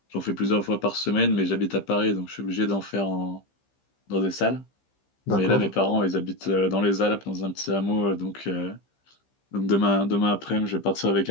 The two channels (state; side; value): late; right; 15 ms